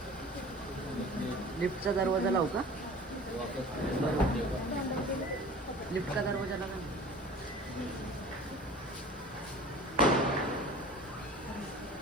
लिफ्टचा दरवाजा लावू का? लिफ्टचा दरवाजा लावा.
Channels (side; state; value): both; normal; correlation 0.42